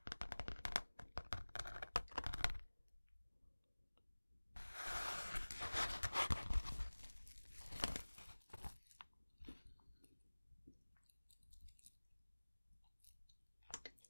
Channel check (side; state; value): both; inverted; correlation -1.00